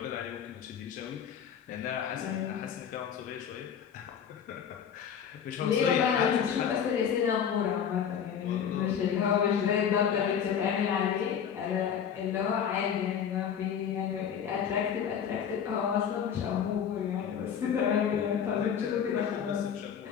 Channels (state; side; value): quieter; right; 8.1 dB